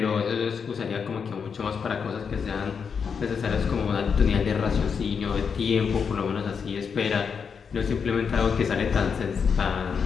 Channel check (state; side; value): quieter; right; 6.3 dB